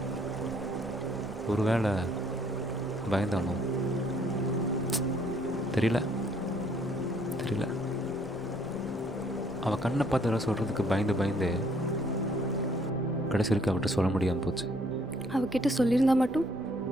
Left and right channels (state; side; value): normal; both; correlation 0.64